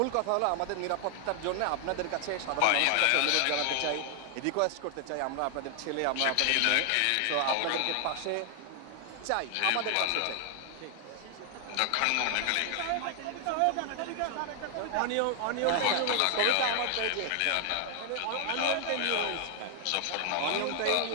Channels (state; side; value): different; both; correlation 0.00